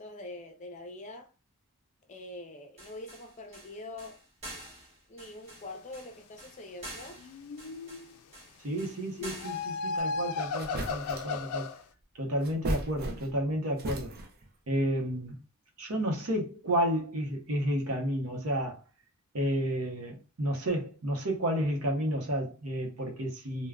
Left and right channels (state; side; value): normal; both; correlation 0.30